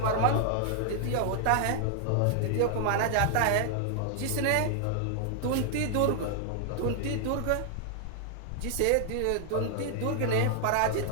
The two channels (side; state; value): both; different; correlation 0.00